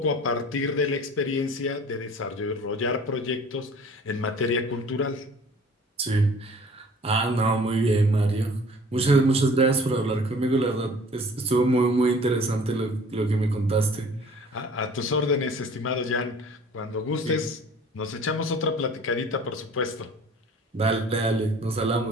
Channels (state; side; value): normal; both; correlation 0.49